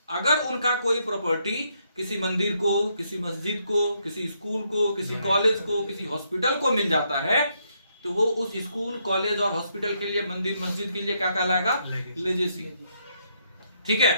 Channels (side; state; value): both; inverted; correlation -0.75